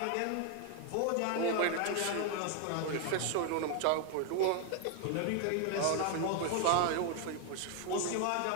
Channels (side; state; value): both; different; correlation 0.01